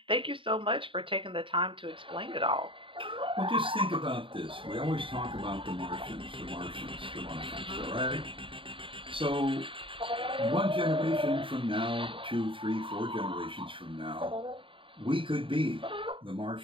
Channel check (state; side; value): late; left; 0.25 ms